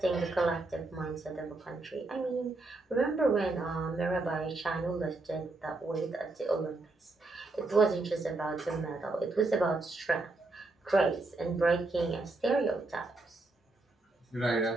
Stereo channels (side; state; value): left; quieter; 3.2 dB